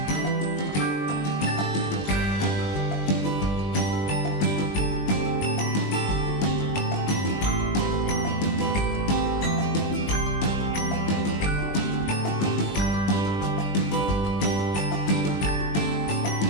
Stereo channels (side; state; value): right; late; 20 ms